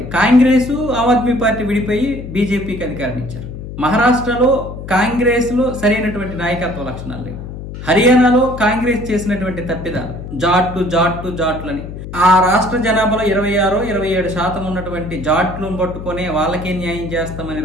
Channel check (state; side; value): noise; left; hum, 10 dB below the sound